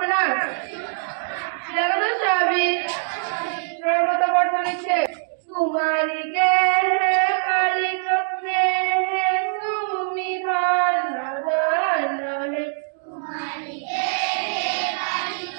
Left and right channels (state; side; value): silent; left; digital silence